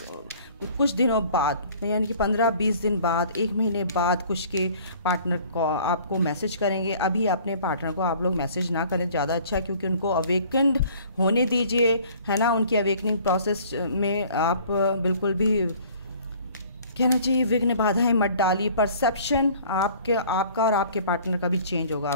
कुछ दिनों बाद, यानी कि 15-20 दिन बाद, 1 महीने बाद कुछ के पार्टनर को आपको मैसेज करेंगे। अभी अपने पार्टनर को आप लोग मैसेज ना करें, ज़्यादा अच्छा है, क्योंकि उनको अवेकेंड होने दीजिए, है ना। उनकी अवेकनिंग प्रोसेस में आप बिल्कुल भी कहना चाहिए विघ्न बाधाएं मत डालिए। परसेप्शन आपका और आपके पार्टनर का भी चेंज होगा।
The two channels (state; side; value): inverted; both; correlation -0.52